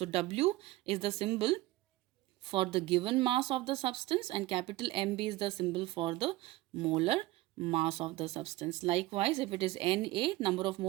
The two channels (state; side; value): quieter; left; 18.3 dB